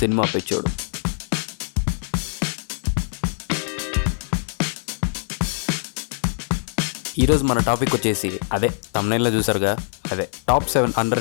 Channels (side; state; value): right; silent; digital silence